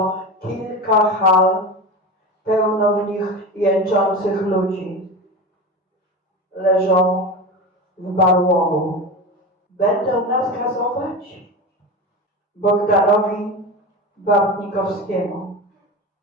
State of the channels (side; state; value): both; normal; correlation 0.26